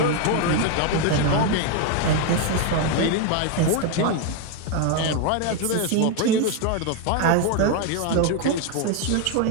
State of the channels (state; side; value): different; both; correlation 0.01